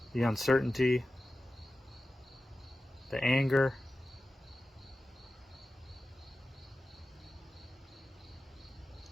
the uncertainty, the anger.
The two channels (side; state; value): both; normal; correlation 0.94